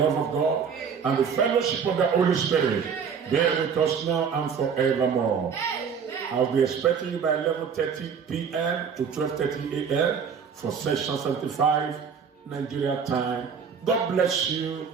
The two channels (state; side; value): quieter; left; 6.6 dB